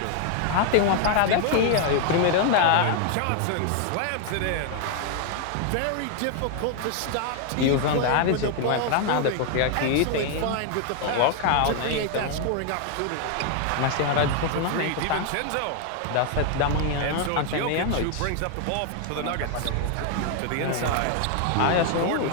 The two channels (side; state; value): both; different; correlation 0.00